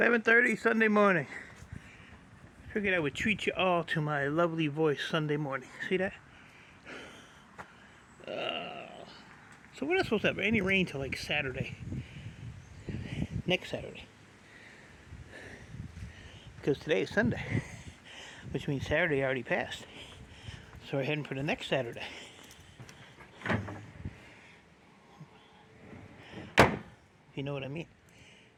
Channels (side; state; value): both; identical; correlation 1.00